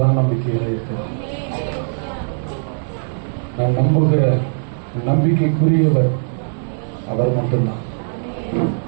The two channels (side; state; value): left; silent; digital silence